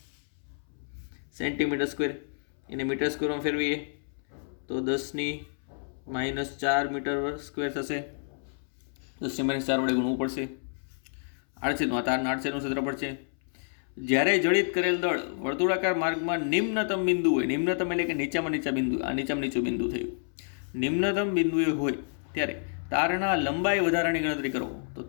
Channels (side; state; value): right; silent; 58 dB below the other